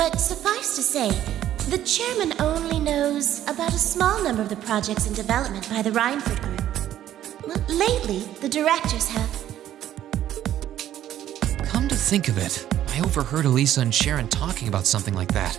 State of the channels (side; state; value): left; quieter; 12.0 dB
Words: suffice to say, the chairman only knows about a small number of the projects in development by the Rhineford Group. Well, lately, the directors have. Come to think of it, I overheard Elisa and Sharon talking about something like that.